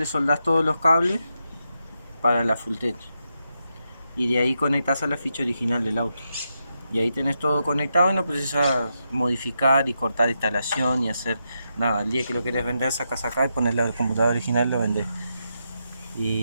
soldás todos los cables para la full tech. Y de ahí conectás a la ficha original del auto. Y ahí tenés todo conectado y no precisas modificar y cortar instalación y hacer nada. El día que lo querés vender, sacas acá y pones la computadora original y lo vendés.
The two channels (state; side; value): inverted; both; correlation -0.84